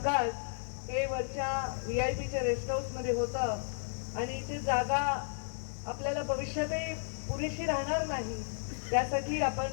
हे वरच्या VIPच्या रेस्ट हाऊस मध्ये होतं आणि इथे जागा आपल्याला भविष्यातही पुरेशी राहणार नाही. त्यासाठी आपण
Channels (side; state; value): right; silent; digital silence